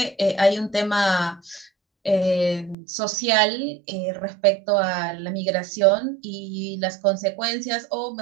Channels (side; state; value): left; drops out; at 2.8 s